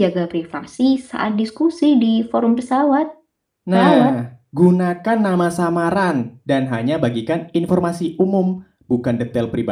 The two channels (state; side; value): identical; both; correlation 1.00